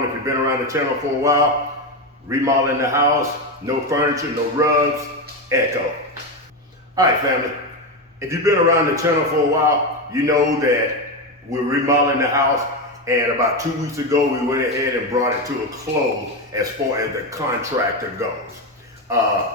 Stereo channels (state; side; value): normal; both; correlation 0.13